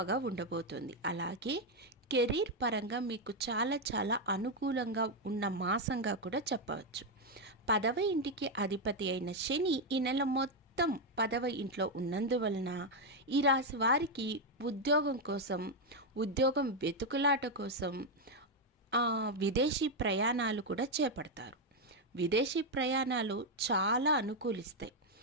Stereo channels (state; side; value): normal; both; correlation 0.03